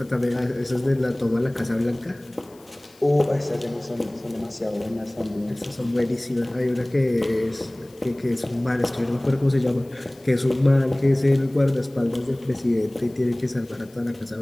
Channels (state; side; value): noise; left; hiss, 28 dB below the sound